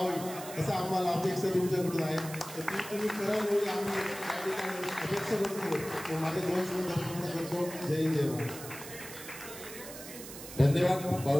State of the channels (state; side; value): noise; right; hiss, 12 dB below the sound